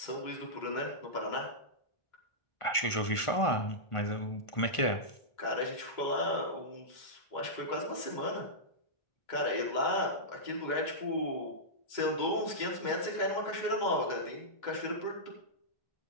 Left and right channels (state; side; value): late; right; 1.5 ms